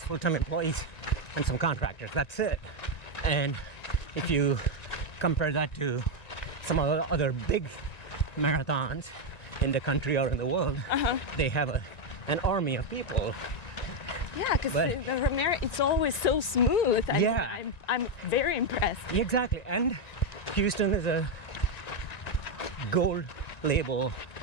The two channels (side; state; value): right; late; 1.9 ms